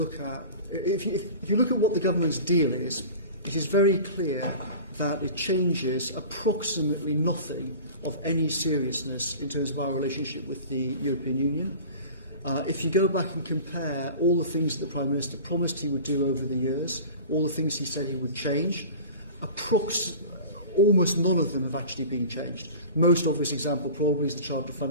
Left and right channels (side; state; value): both; inverted; correlation -0.37